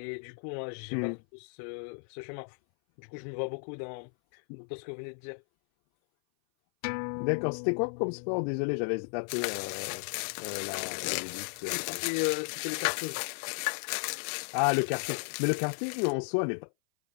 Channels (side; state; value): right; silent; 55 dB below the other